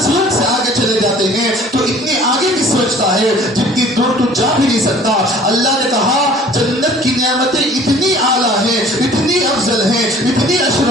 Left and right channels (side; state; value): both; normal; correlation 0.50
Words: سورج سے آگے چلے جاتے ہیں، تو اتنی آگے کی سوچتا ہے جتنی دور تو جا بھی نہیں سکتا۔ اللہ نے کہا جنت کی نعمتیں اتنی اعلیٰ ہیں، اتنی افضل ہیں، اتنی